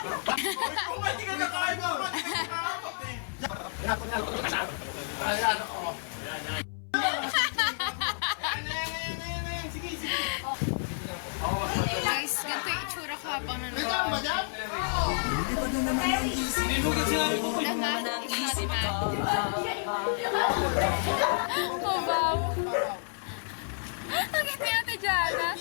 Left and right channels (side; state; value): right; silent; 58 dB below the other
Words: Hindi ka nakain mo. Ayan, oo. Sige, sige. Guys, ganito yung itsura ko habang nanonood. Naman, it's not bad. Oh, wow. Ang ganda natin dyan, ha?